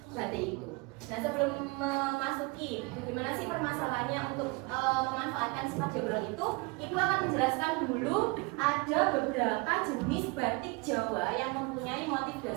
batik itu. Nah, sebelum memasuki bagaimana sih permasalahannya untuk memanfaatkan sifat diagonal itu, Ibu akan menjelaskan dulu ada beberapa jenis batik Jawa yang mempunyai motif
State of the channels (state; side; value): quieter; left; 26.5 dB